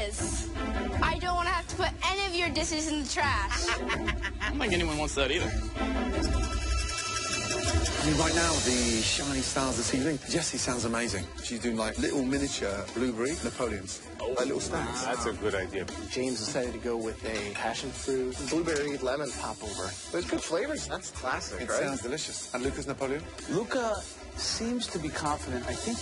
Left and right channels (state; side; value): identical; both; correlation 1.00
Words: I don't want to have to put any of your dishes in the trash. I don't think anyone wants that either. I mean, right now, the shiny stars of the ceiling. Jessie sounds amazing. She's doing like little miniature blueberry Napoleons. Like little stars. That's a good idea. James decided to go with a passion fruit, blueberry, lemon popover. There's good flavors. That's classic, It right? sounds delicious. And Lucas Napoleon? Luca seems to be confident. I think